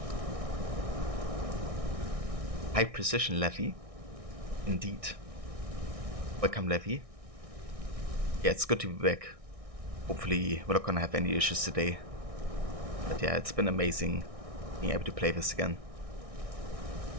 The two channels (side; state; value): left; late; 1.6 ms